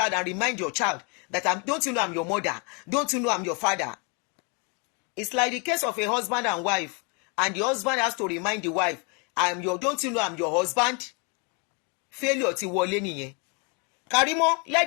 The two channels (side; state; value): right; quieter; 34.1 dB